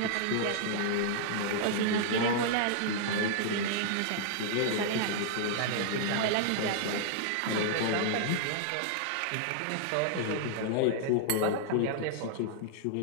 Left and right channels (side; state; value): both; different; correlation -0.01